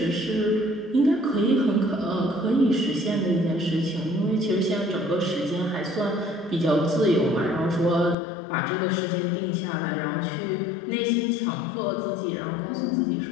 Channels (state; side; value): drops out; right; at 8.2 s